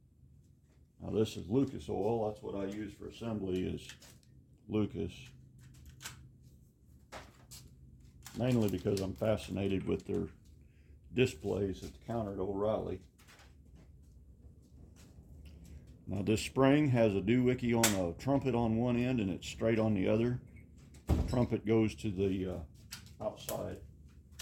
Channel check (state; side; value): identical; both; correlation 1.00